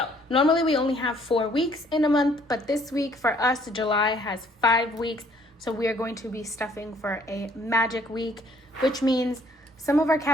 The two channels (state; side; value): normal; both; correlation 0.62